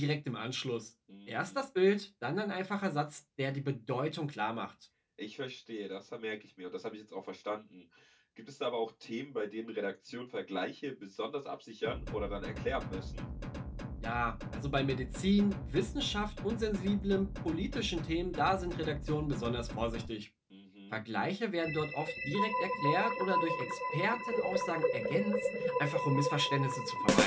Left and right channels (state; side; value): identical; both; correlation 1.00